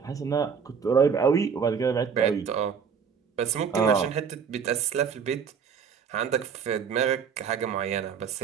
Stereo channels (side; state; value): left; quieter; 6.6 dB